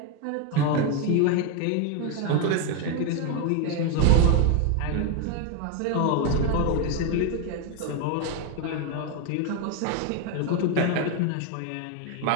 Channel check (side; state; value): both; different; correlation 0.01